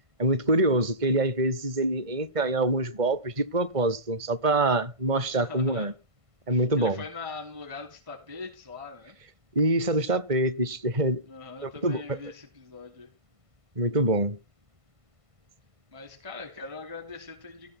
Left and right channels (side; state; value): left; late; 1.5 ms